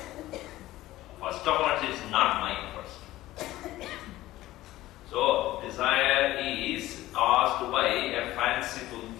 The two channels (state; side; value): quieter; right; 16.2 dB